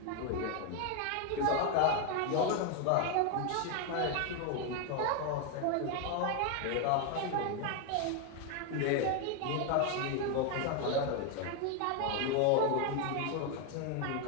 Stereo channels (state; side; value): different; both; correlation 0.01